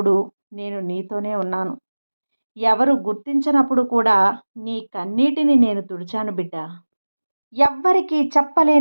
నేను నీతోనే ఉన్నాను. ఎవరు గుర్తించనప్పుడు కూడా నీ కన్నీటిని నేను తుడిచాను బిడ్డ. ఎవ్వరికీ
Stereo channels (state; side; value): inverted; both; correlation -1.00